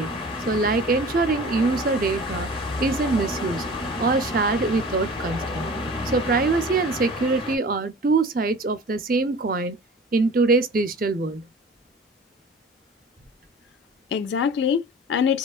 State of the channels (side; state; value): both; normal; correlation 0.41